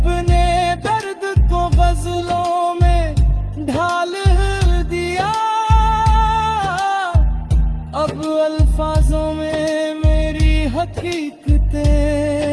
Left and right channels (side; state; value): both; identical; correlation 1.00